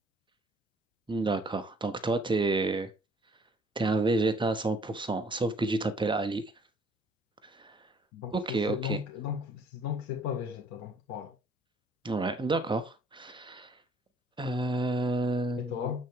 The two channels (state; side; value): normal; both; correlation 0.59